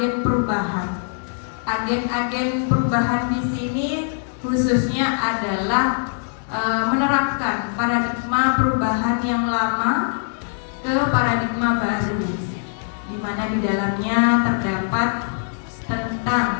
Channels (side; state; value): right; silent; digital silence